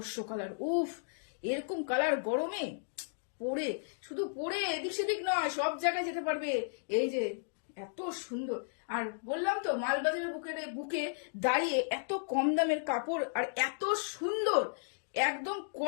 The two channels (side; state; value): right; silent; digital silence